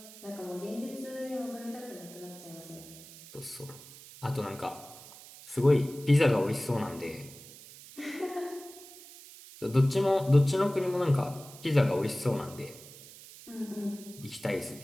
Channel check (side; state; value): right; noise; hiss, 18 dB below the sound